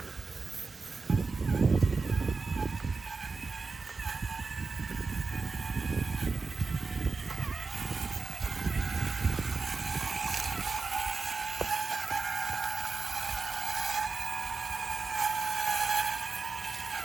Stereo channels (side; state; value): left; quieter; 4.2 dB